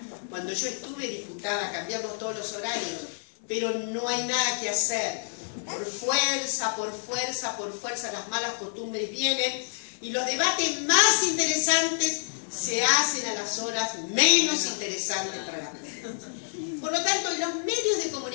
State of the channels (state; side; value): silent; right; 59 dB below the other